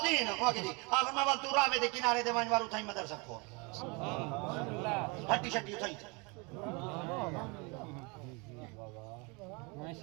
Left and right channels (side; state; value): left; quieter; 29.6 dB